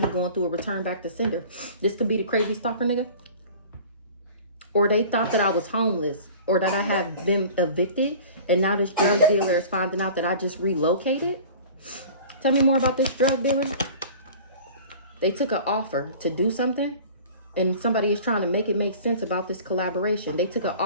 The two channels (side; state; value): both; inverted; correlation -0.42